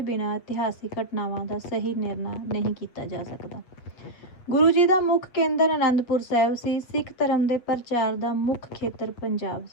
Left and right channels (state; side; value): late; right; 8.2 ms